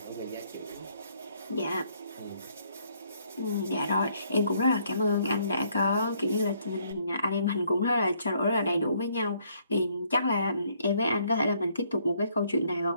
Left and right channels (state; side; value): inverted; both; correlation -0.68